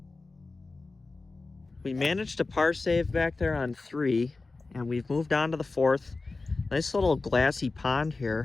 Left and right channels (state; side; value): quieter; right; 3.6 dB